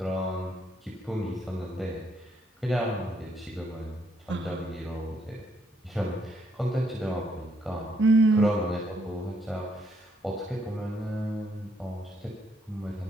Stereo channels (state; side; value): normal; both; correlation 0.72